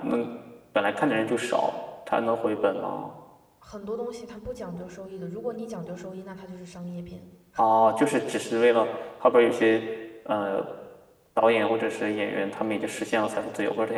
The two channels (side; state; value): both; identical; correlation 1.00